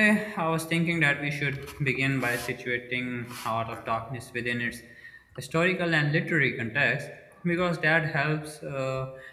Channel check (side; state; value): both; identical; correlation 1.00